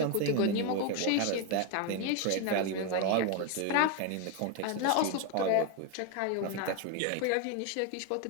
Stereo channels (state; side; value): different; both; correlation 0.01